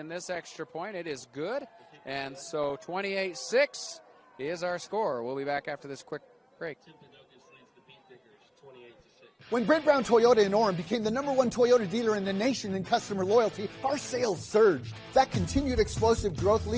this extra point. It is good. And so 28-6 is our score. We'll be back after this quick break. Timpanogos leads the Beetdiggers 28-6. When Brent Brown Toyota in Orem became the #1 Toyota dealer in the nation in customer loyalty, our sales surged. That continued explosive growth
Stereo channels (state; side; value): identical; both; correlation 1.00